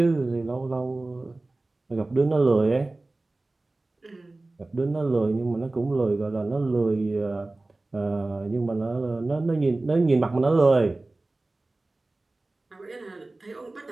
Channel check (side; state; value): left; quieter; 3.0 dB